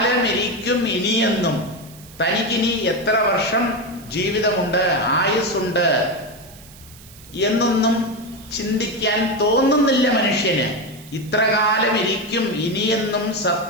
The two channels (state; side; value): noise; right; hiss, 21 dB below the sound